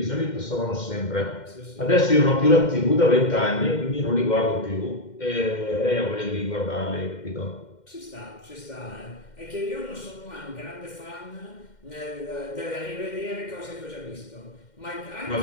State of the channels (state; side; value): late; right; 2.1 ms